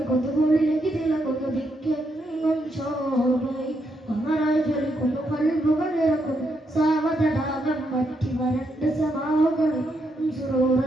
തിളങ്ങുന്നു ദിക്കെങ്ങും ശോഭയും അമരായി ജ്വലിക്കുന്നു കൽബുകൾ ഇറക്കുന്നു സാവതടാകം മറ്റി വരണ്ട സമാവുകളും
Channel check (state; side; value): normal; both; correlation 0.79